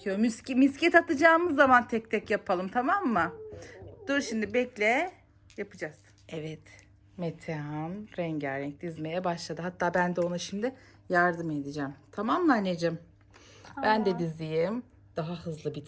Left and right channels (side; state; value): both; identical; correlation 1.00